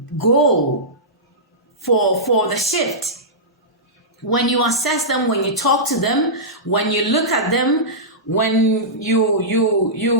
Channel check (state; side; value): normal; both; correlation -0.16